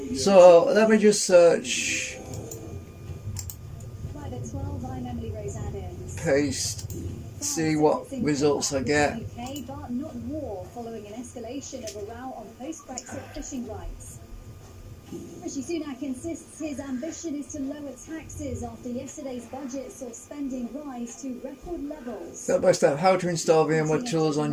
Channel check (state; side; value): identical; both; correlation 1.00